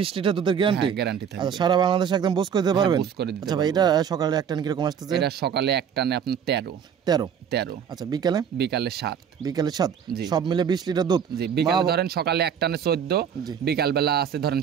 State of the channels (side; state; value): left; quieter; 7.9 dB